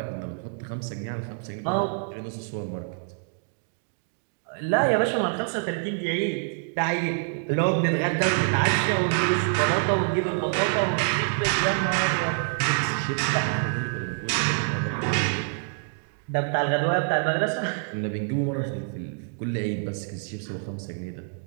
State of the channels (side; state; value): left; silent; 61 dB below the other